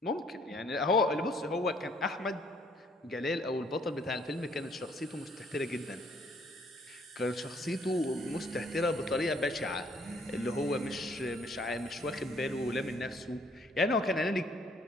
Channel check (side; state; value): both; normal; correlation 0.64